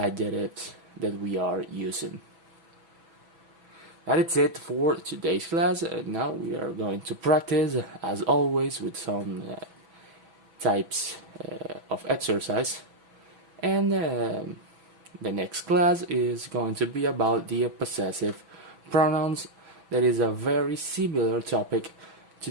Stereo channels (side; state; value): left; late; 6.1 ms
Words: that we are using. That is it for today's class. Now we are going to practice, as always, with some types of exercise. And the next class is going to be about the possessive pronouns. That is a very similar topic to